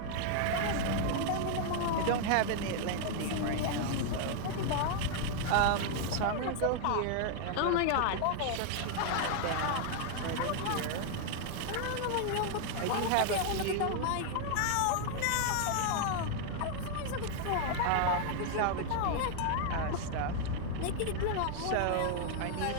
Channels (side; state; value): both; different; correlation 0.00